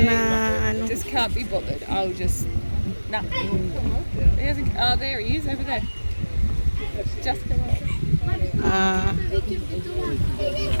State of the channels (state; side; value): inverted; both; correlation -1.00